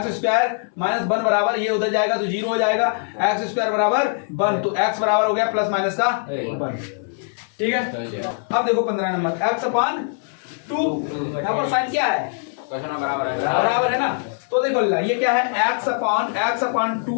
माइनस 1 बराबर, ये उधर जाएगा तो 0 हो जाएगा। x² बराबर 1, तो x बराबर हो गया प्लस माइनस का 1। ठीक है, अब देखो 15 नंबर x/2। यहाँ पर साइन क्या है? बराबर है ना। तो देखो ये क्या है?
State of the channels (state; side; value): silent; right; 64 dB below the other